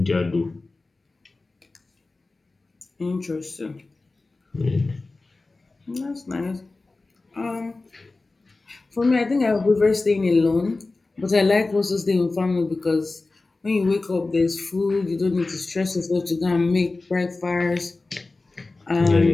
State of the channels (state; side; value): quieter; right; 3.4 dB